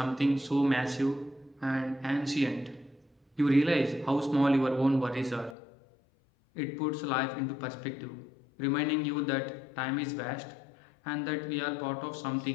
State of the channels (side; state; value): right; drops out; at 5.6 s